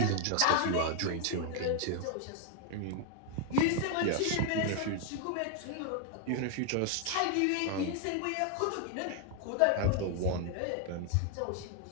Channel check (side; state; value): both; different; correlation 0.00